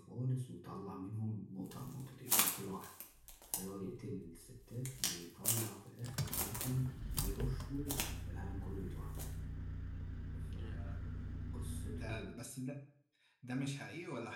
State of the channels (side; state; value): both; identical; correlation 1.00